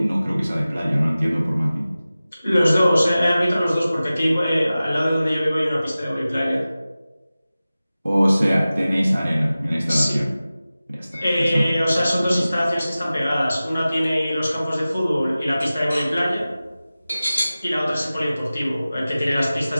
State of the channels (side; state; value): both; inverted; correlation -0.96